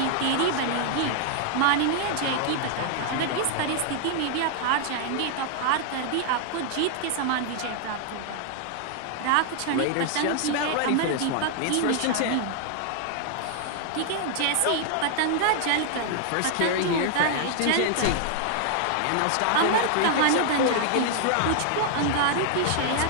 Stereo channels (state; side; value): different; both; correlation 0.00